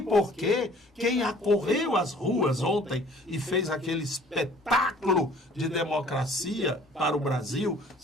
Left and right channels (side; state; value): both; normal; correlation 0.53